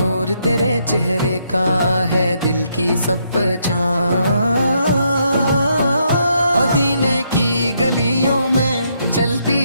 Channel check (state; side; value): inverted; both; correlation -0.75